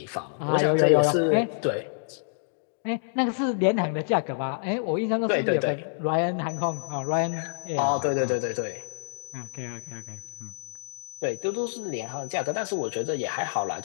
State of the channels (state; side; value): silent; right; digital silence